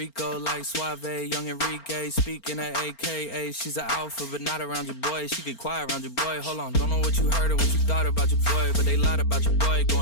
like Suave, young Enrique, speaking at AKA. She's an alpha, but not around your boy. She get quiet around your boy. Hold on, don't know what you heard or what you thought about your boy, but they lied about your boy.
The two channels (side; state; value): right; late; 4.4 ms